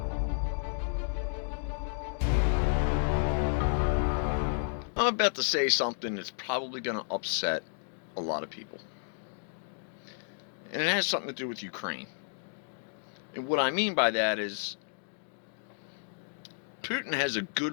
about to say something that's probably going to upset a lot of people. And it has something to do with Ukraine. And what I mean by that is Putin has a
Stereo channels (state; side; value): silent; right; digital silence